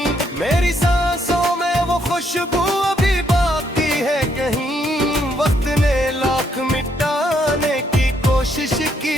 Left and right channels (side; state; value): both; normal; correlation 0.73